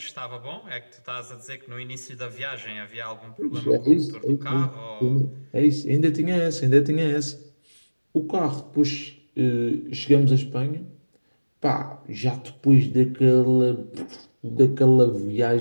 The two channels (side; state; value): both; inverted; correlation -1.00